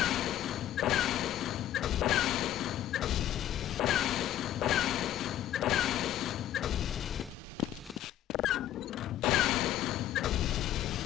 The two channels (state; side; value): quieter; right; 12.2 dB